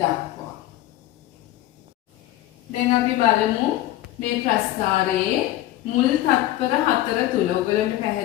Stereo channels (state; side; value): quieter; right; 14.9 dB